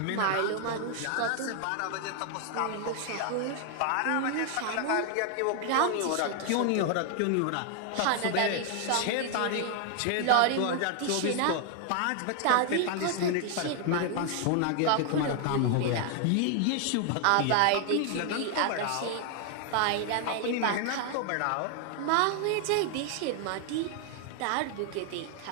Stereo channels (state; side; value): different; both; correlation 0.00